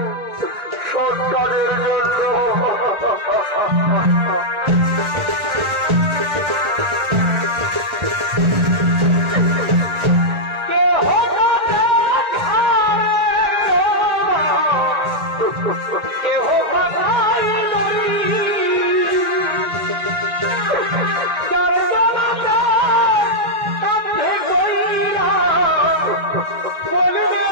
সৎ কাজের জন্য।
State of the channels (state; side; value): late; left; 1.9 ms